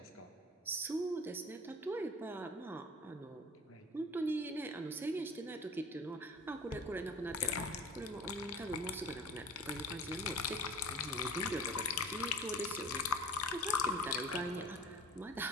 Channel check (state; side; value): normal; both; correlation 0.42